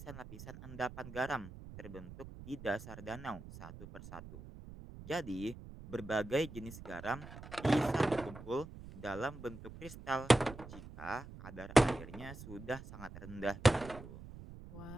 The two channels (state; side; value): noise; right; rumble, 14 dB below the sound